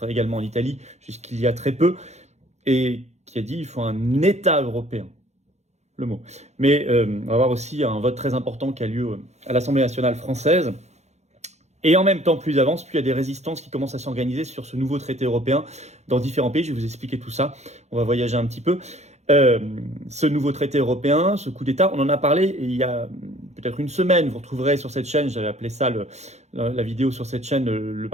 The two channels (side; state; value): left; late; 0.32 ms